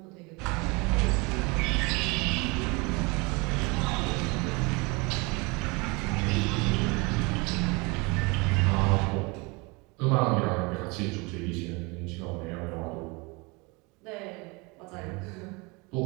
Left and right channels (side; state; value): left; quieter; 27.4 dB